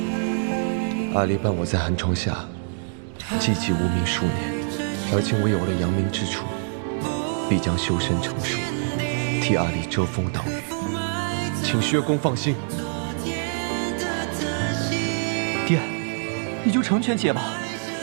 阿离伴我在寒窗下寂寂无名数年，而今我有了扬名之处，必将修身成术，替阿离遮风挡雨，请薛公放心。爹，你就成全姐吧。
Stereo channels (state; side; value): silent; left; 61 dB below the other